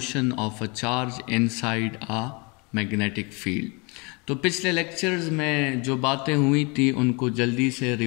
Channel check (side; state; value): right; quieter; 30.0 dB